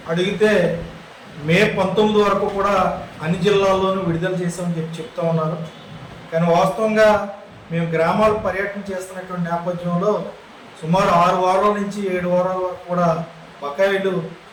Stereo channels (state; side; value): identical; both; correlation 1.00